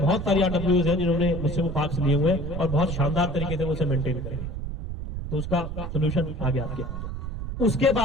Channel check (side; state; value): right; noise; rumble, 6 dB below the sound